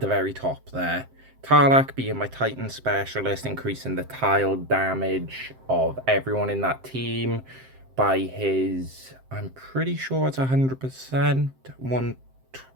very top there. Tarlac being my Titan specialist, increasing the tile damage of everyone in that team by his, I'm pretty sure it's 100%,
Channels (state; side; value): late; left; 7.7 ms